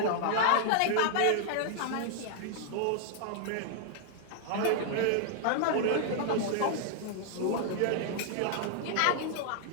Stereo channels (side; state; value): both; different; correlation -0.01